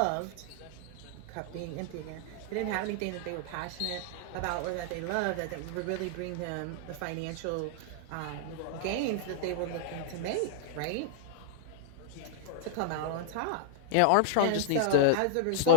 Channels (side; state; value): both; different; correlation 0.00